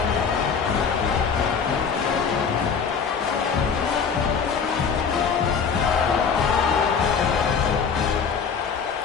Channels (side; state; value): right; quieter; 6.2 dB